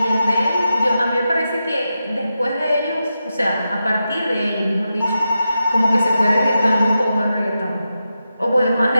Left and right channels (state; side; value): inverted; both; correlation -0.89